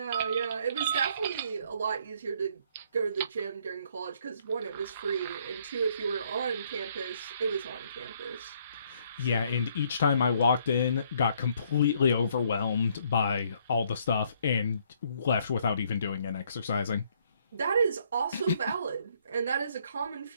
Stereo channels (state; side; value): inverted; both; correlation -0.67